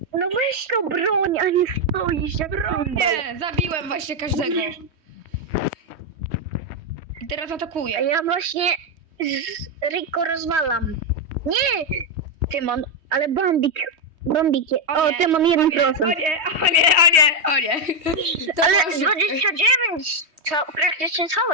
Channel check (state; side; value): late; left; 3.2 ms